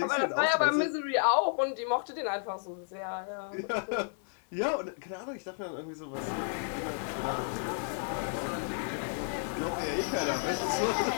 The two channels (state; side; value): silent; right; digital silence